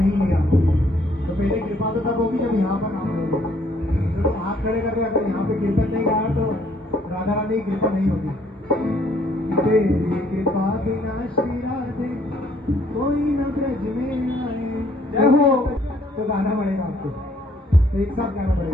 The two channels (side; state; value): both; normal; correlation 0.64